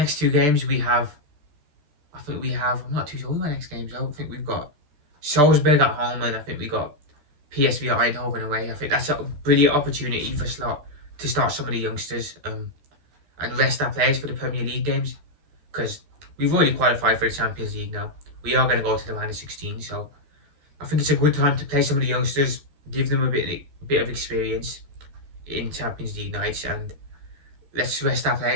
2 games I'm not too sure what the next games are. I think we've got Salzburg at home, and I think we got PSV at Eindhoven away. I think that's a brilliant opportunity for Slot to start some of the youngsters and rest our players for the Premier League games, because we've already qualified for the Champions League now. We are going to go to the round of 16, so I think it's a good time to play some of the youngsters, give them a bit of experience in Champions League nights, and let's rest our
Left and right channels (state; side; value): late; left; 14 ms